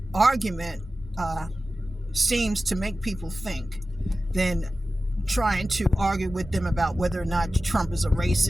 argument seems to make people think than trying to argue with them about whether or not Trump is a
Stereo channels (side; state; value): both; normal; correlation 0.95